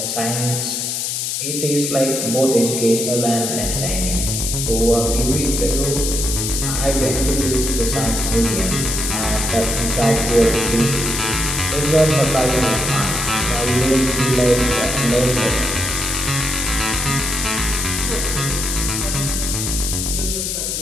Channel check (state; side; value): noise; left; hiss, 1 dB below the sound